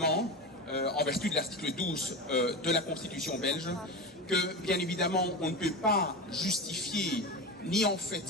en vertu de l'article 12 de la Constitution belge, que bien évidemment on ne peut pas justifier ni en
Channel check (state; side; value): normal; both; correlation 0.23